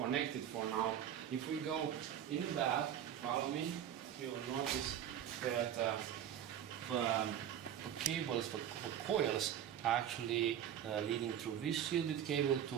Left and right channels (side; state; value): left; quieter; 9.9 dB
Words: for now. If we go in the back, follow me, you will notice that the cables, the coils, are actually leading through this shielded cable to